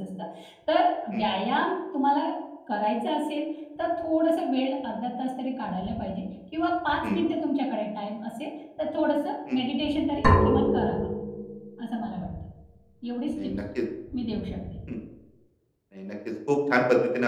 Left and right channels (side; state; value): both; identical; correlation 1.00